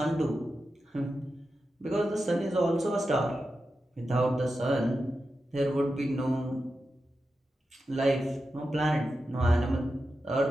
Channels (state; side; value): normal; both; correlation 0.90